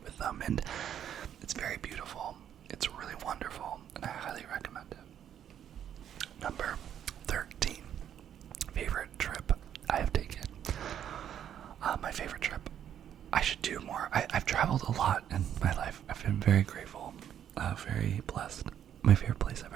with them, and it's very beautiful. It's really wonderful, and I highly recommend it. Number 13, favorite trip I have taken. My favorite trip, I should do more. I've traveled a lot in my life. I've been very grateful, very blessed. My favorite place I've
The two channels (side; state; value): left; quieter; 9.7 dB